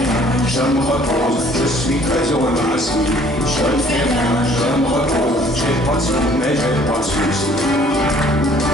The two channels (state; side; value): normal; both; correlation 0.57